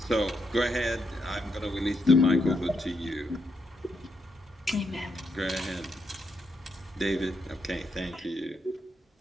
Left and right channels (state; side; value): normal; both; correlation 0.80